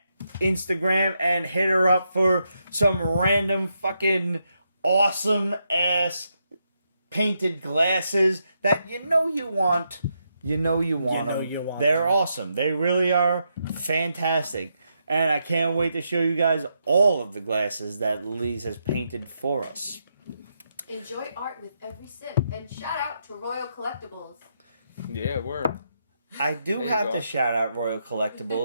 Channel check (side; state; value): both; inverted; correlation -0.81